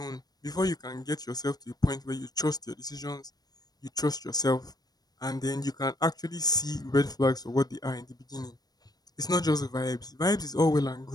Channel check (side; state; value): right; late; 0.19 ms